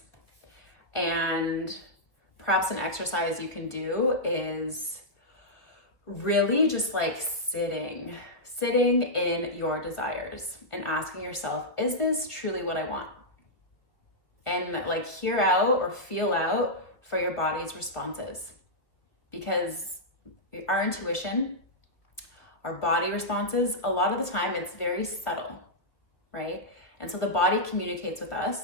And perhaps an exercise you can do is really just like sitting in your desires and asking yourself, is this truly what I want? And like hear out or feel out for your body's responses. Because our intuition, our body responses, a lot of the time it's very subtle, right? And so the body communicates with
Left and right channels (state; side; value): late; right; 1.3 ms